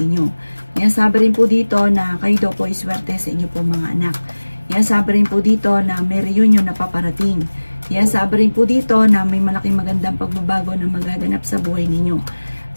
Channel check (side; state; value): both; inverted; correlation -1.00